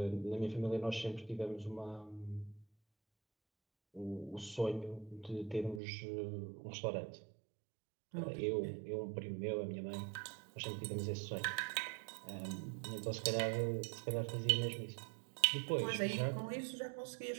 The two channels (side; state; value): left; drops out; at 5.8 s